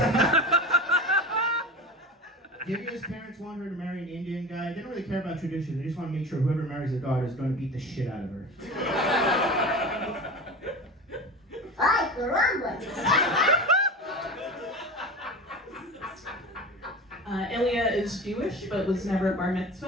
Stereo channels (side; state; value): both; normal; correlation 0.32